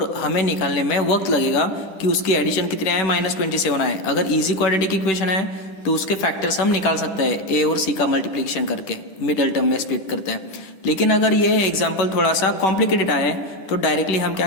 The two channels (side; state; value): right; late; 11 ms